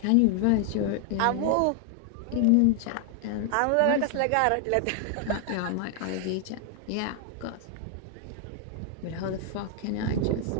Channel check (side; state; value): both; different; correlation 0.00